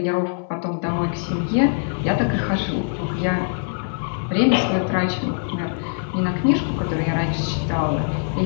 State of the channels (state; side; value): silent; right; 64 dB below the other